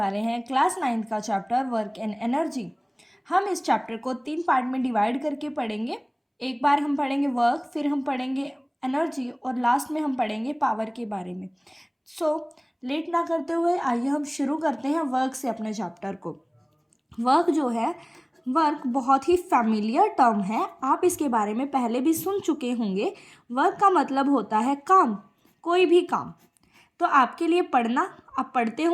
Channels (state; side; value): identical; both; correlation 1.00